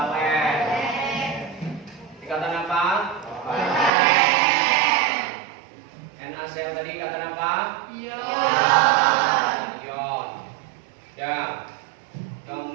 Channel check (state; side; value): drops out; left; at 3.9 s